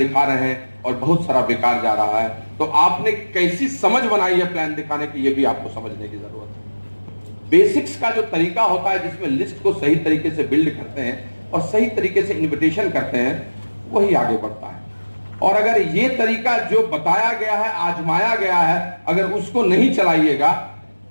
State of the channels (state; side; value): inverted; both; correlation -1.00